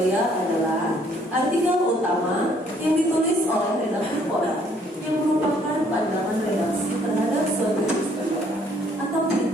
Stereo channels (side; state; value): both; normal; correlation 0.64